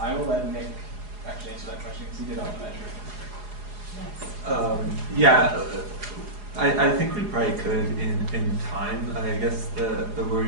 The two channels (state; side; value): late; left; 4.8 ms